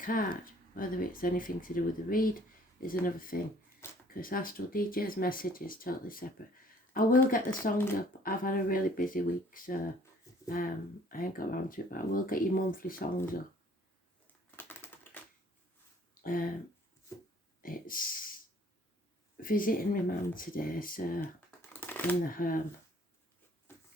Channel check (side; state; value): both; normal; correlation 0.57